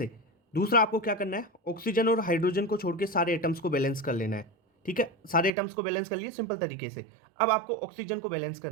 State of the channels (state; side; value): drops out; left; at 5.5 s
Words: दूसरा आपको क्या करना है, ऑक्सीजन और हाइड्रोजन को छोड़ के सारे एटम्स को बैलेंस कर लेना है। ठीक है, सारे एटम्स को बैलेंस कर लिए सिंपल तरीके से। अब आपको ऑक्सीजन को बैलेंस